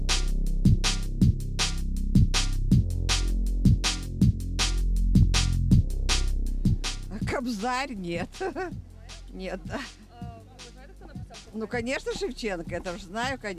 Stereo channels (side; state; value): both; identical; correlation 1.00